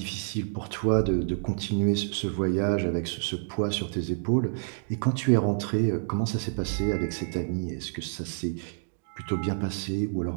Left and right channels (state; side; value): silent; left; digital silence